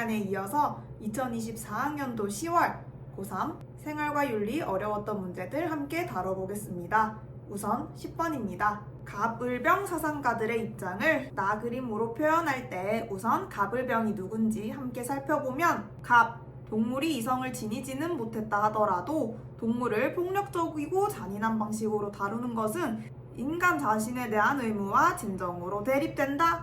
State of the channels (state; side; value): identical; both; correlation 1.00